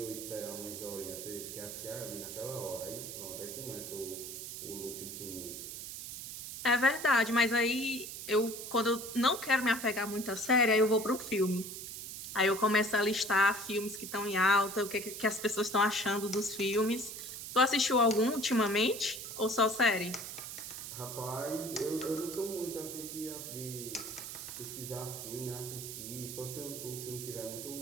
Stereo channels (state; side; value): noise; right; hiss, 8 dB below the sound